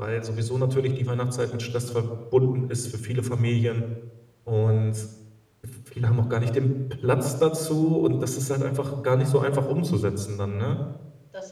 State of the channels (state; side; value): identical; both; correlation 1.00